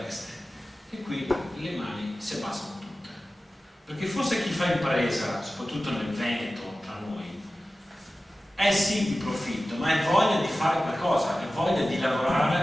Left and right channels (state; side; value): normal; both; correlation 0.95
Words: E qui le mani si abbassano tutte, perché forse chi fa impresa, soprattutto nel Veneto, tra noi, è sì di profitto, ma è voglia di fare qualcosa, è voglia di